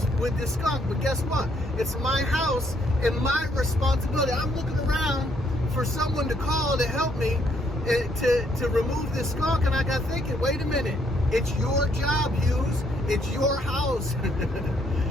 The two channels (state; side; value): normal; both; correlation 0.70